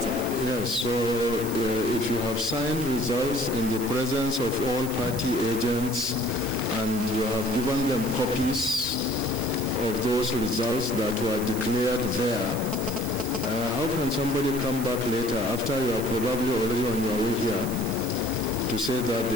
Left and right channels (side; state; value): right; noise; hiss, 11 dB below the sound